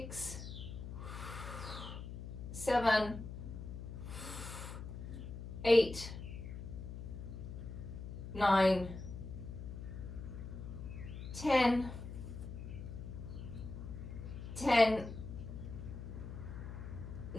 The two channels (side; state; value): left; noise; hum, 8 dB below the sound